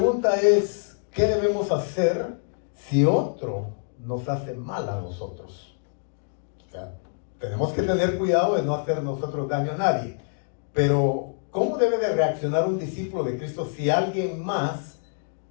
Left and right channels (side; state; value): right; silent; digital silence